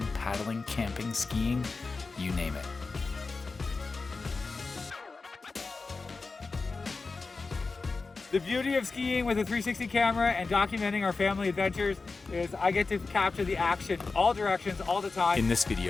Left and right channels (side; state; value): right; quieter; 4.1 dB